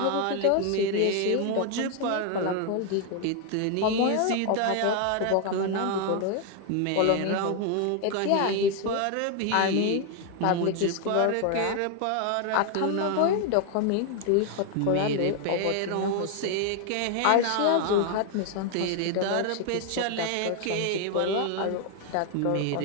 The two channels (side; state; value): both; different; correlation 0.01